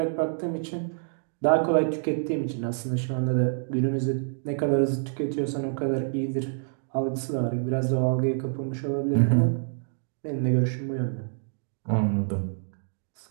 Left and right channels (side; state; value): left; silent; digital silence